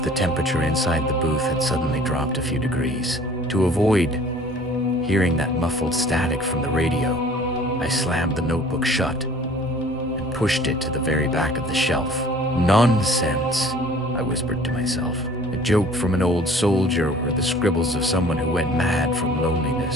the temperature inside the booth had suddenly dropped a few degrees. To avoid hearing that muffled static from the radio, I slammed the notebook shut and pushed it to the very back of the shelf. "Nonsense," I whispered to myself. A joke from an old soldier or the scribbles of someone who went mad from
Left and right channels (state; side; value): normal; both; correlation 0.51